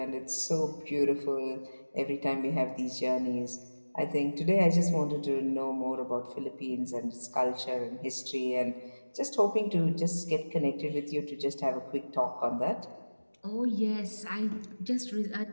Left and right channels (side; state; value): both; inverted; correlation -1.00